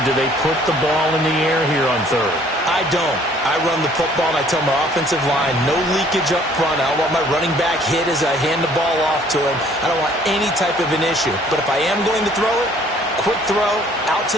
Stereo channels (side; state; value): both; normal; correlation 0.58